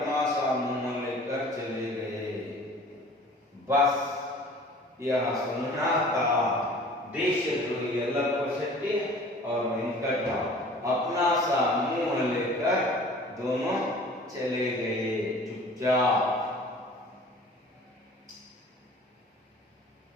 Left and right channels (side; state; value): both; normal; correlation 0.47